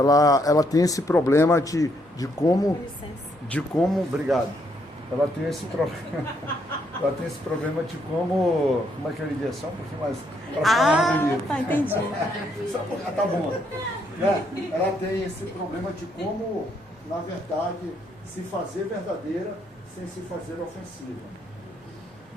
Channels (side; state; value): both; normal; correlation 0.73